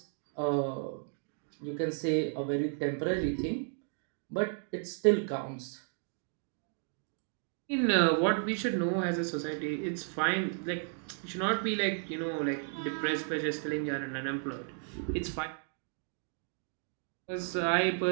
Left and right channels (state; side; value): silent; left; 55 dB below the other